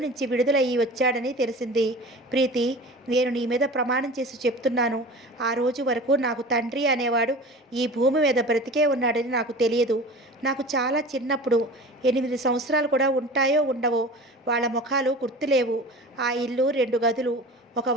విడుదలయ్యి వచ్చాడని తెలిసింది. ప్రీతి, నేను నీ మీద ప్రమాణం చేసి చెప్తున్నాను, ఆ రోజు వరకు నాకు తండ్రి అనేవాడు ఈ భూమి మీద బ్రతికే ఉన్నాడని నాకు తెలియదు. నాకు చాలా చిన్నప్పుడు 8 సంవత్సరాలు కూడా ఉంటాయో ఉండవో వాళ్ళ ముఖాలు గుర్తులేవు. ఆ ఇల్లు 2 గదులు, ఒక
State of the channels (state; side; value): normal; both; correlation 0.37